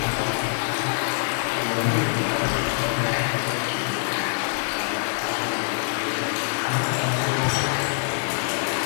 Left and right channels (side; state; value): right; silent; digital silence